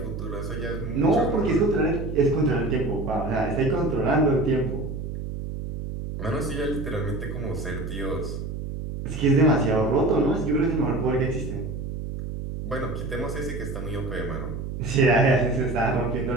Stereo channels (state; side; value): noise; right; hum, 6 dB below the sound